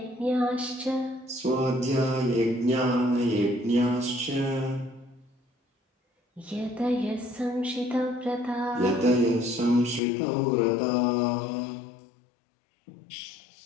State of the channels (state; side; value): drops out; right; at 10.0 s